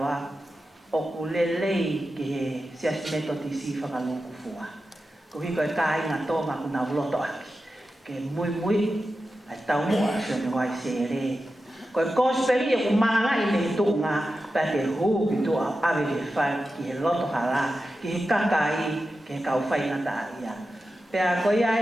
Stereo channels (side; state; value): both; normal; correlation 0.92